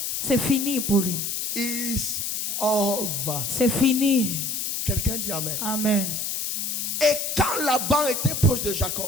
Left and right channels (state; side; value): noise; left; hiss, 2 dB below the sound